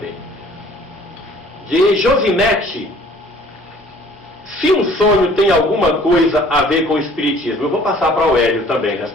de Josinete. Se um sonho tem alguma coisa a ver com o Espiritismo? Eu vou passar para o Hélio também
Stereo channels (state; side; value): normal; both; correlation 0.54